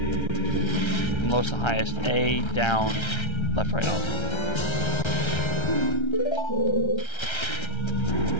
from lowest to highest. A, down, left, right, up.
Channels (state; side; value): late; right; 1.3 ms